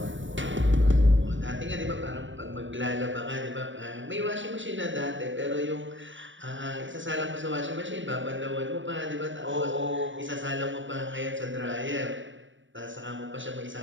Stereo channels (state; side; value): late; left; 0.56 ms